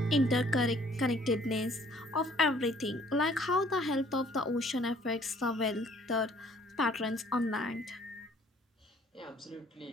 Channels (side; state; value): both; normal; correlation 0.58